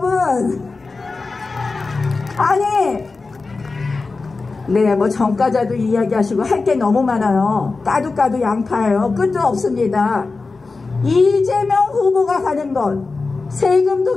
아니, 네, 정가자도 이야기하시고 할 게 너무 많아요. 까도 양파예요. 끝도 없습니다. 이재명 후보가 가는 것, 세금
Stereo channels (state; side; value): quieter; right; 3.9 dB